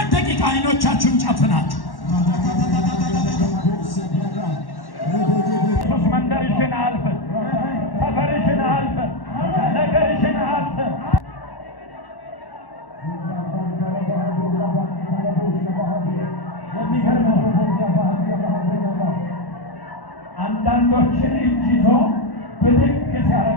ደቂቃ አይኖቻችሁን ጨፍናችሁ መንደርሽን አልፈን ሰፈርሽን አልፈን ነገርሽን አልፈን አንዳንዶችን እጅ ይዞ ብድግ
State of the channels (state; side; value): late; right; 1.1 ms